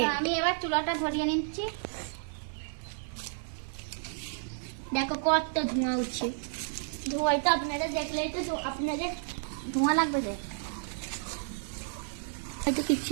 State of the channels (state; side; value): silent; left; digital silence